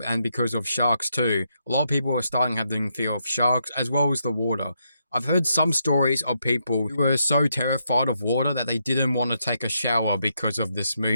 and because of sharks too. A lot of people were starting having fear of sharks as well as the water. I've heard some stories of people who were so terrified of water that they didn't want to take a shower because of this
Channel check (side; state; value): both; inverted; correlation -0.79